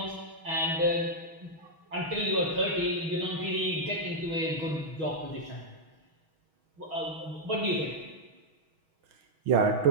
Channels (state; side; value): late; left; 6.3 ms